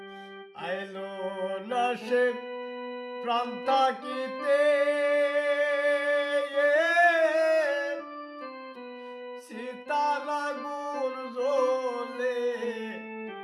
আইলো লাশে প্রাণ থাকিতে সীতার আগুন জ্বলে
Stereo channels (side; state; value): both; identical; correlation 1.00